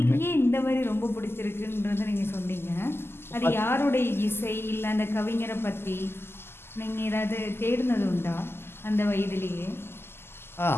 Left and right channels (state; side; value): late; right; 0.12 ms